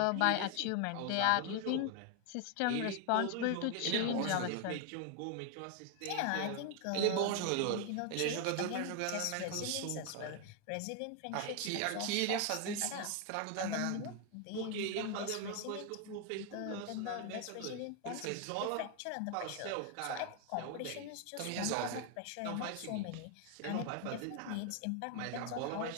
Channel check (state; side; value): different; both; correlation 0.01